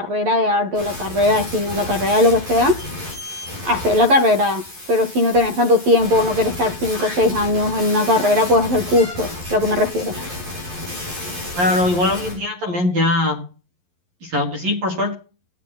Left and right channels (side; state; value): left; late; 11 ms